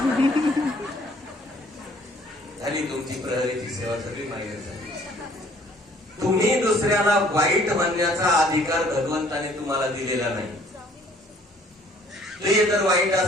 झाली तुमची प्रहरीची सेवा सगळी माहिती झाली. तुम्ही दुसऱ्याला वाईट म्हणण्याचा अधिकार भगवंताने तुम्हाला दिलेला नाही. ते जर वाईट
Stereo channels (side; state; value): both; normal; correlation 0.58